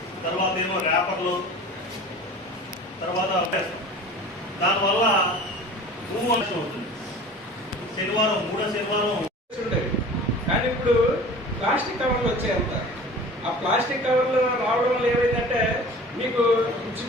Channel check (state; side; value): normal; both; correlation 0.41